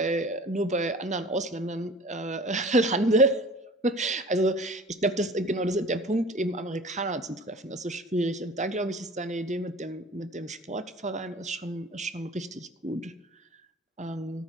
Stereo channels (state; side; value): normal; both; correlation 0.43